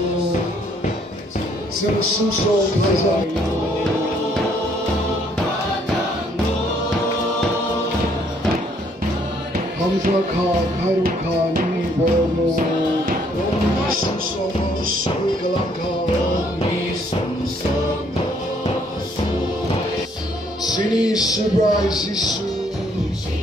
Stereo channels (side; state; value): both; normal; correlation 0.66